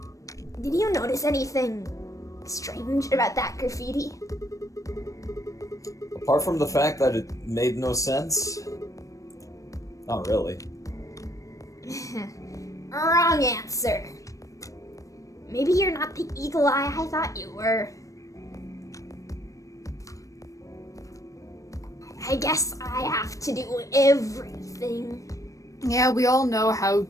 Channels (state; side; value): late; right; 0.16 ms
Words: Did you notice anything strange about that graffiti? Apart from the fact that it made no sense? Not really. Wrong answer. Maybe you're not the eagle eye I thought you were. I guess I have to do everything. Yeah, we all know how